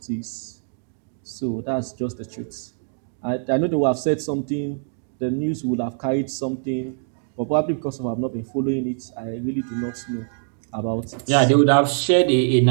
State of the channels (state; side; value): silent; left; digital silence